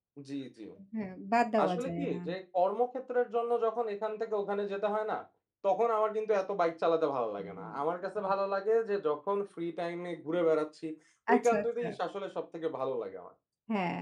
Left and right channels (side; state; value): both; identical; correlation 1.00